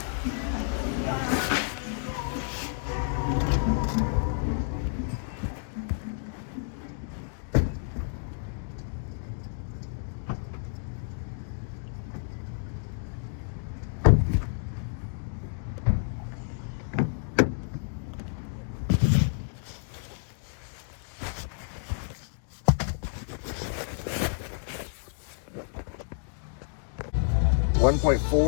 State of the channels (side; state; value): right; silent; digital silence